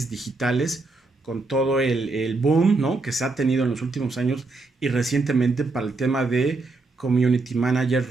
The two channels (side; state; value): left; quieter; 3.5 dB